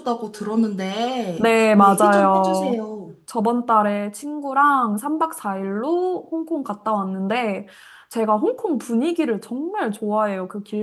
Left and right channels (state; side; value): identical; both; correlation 1.00